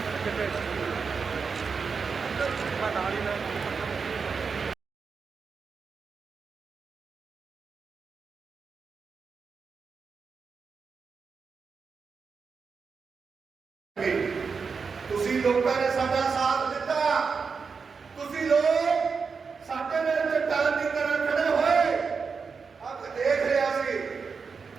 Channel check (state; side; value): quieter; left; 5.3 dB